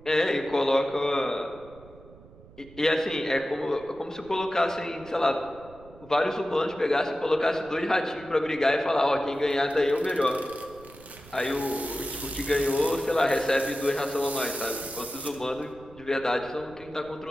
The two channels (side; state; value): right; noise; rumble, 22 dB below the sound